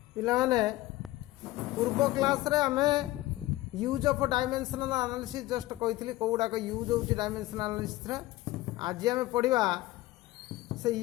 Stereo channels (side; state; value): right; quieter; 17.5 dB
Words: पिलाने पूर्व क्लास रे आमे use of dimensional analysis just कही कौड़ाक यूज हो डायमेंशनल एनालिसिस आज आम पढ़ा से